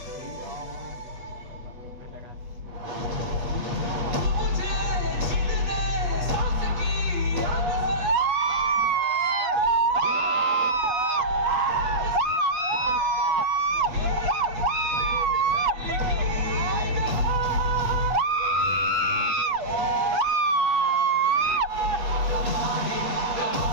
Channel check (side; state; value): left; late; 8.4 ms